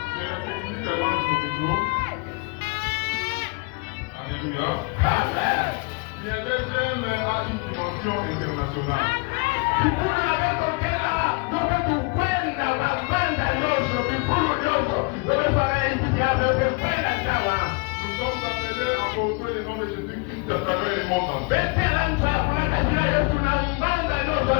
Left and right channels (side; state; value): right; quieter; 29.5 dB